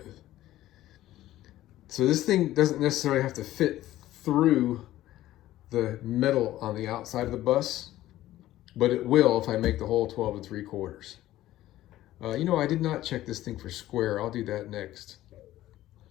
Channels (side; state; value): right; quieter; 14.7 dB